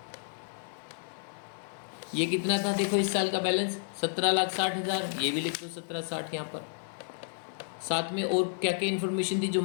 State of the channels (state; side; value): silent; right; digital silence